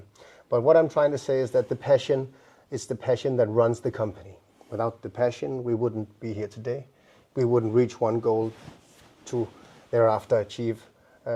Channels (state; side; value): identical; both; correlation 1.00